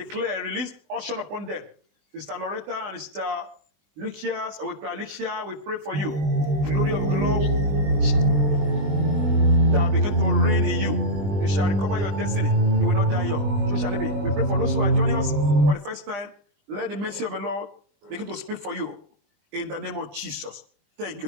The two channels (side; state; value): left; late; 20 ms